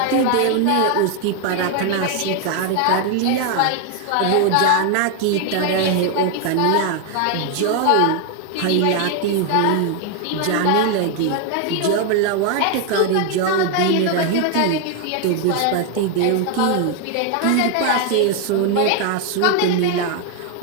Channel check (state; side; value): different; both; correlation 0.01